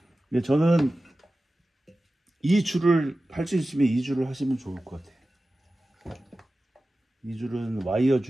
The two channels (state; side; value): normal; both; correlation 0.95